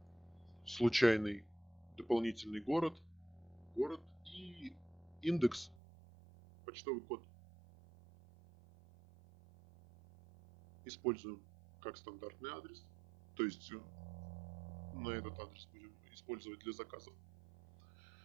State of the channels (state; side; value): drops out; left; at 5.8 s